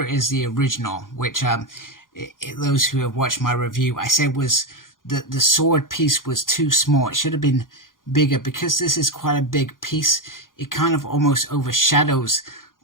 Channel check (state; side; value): late; right; 0.90 ms